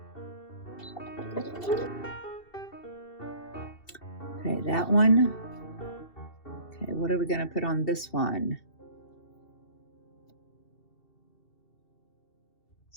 Okay, that one. Okay, what are we going to put on this one?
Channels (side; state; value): right; late; 2.7 ms